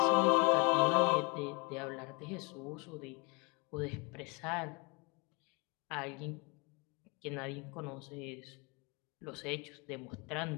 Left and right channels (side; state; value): right; quieter; 29.9 dB